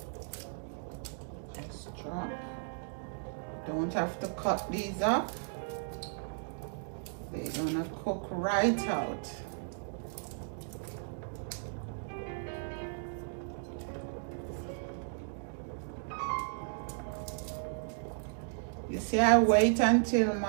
Just drop. Don't have to cut these up. They're gonna cook right out. You see, I wait until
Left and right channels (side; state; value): left; silent; digital silence